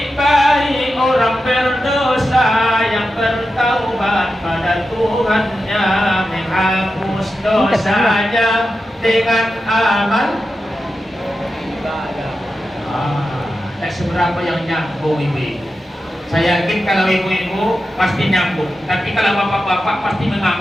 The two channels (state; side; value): normal; both; correlation 0.90